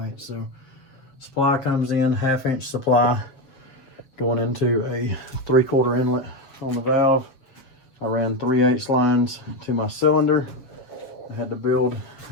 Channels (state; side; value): late; right; 7.6 ms